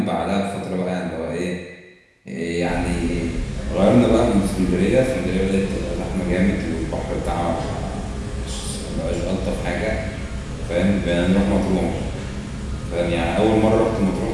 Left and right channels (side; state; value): both; identical; correlation 1.00